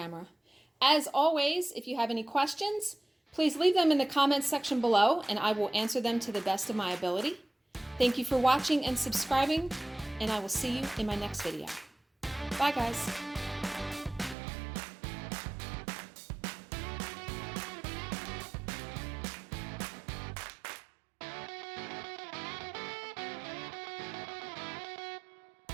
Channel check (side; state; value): left; drops out; at 14.4 s